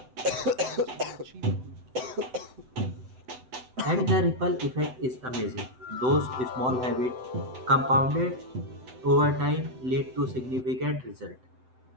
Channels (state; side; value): late; left; 7.9 ms